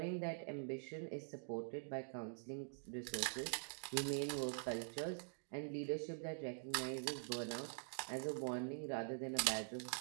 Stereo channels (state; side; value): silent; left; digital silence